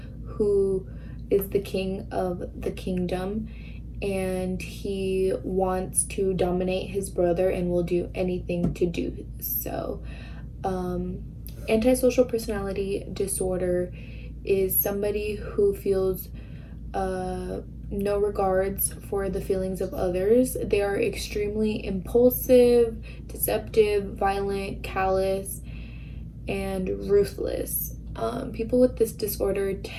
who is the king of the kingdom, and he wants to dominate his brother and will do anything to do so. Antisocial personality disorder is somebody who feels no regards for the feelings of others. They are extremely impulsive, deceptive, violent, callous, and ruthless. People with this disorder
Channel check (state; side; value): identical; both; correlation 1.00